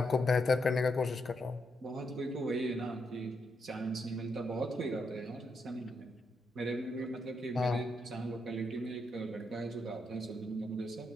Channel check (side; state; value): both; normal; correlation 0.80